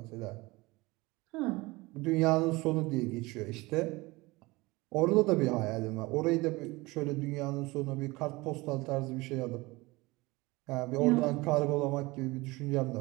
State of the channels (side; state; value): left; quieter; 22.3 dB